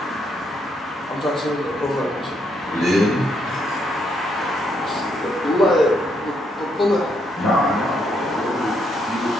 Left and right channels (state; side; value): normal; both; correlation 0.75